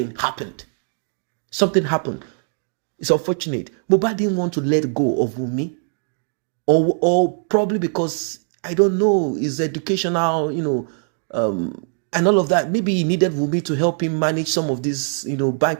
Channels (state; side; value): silent; left; 59 dB below the other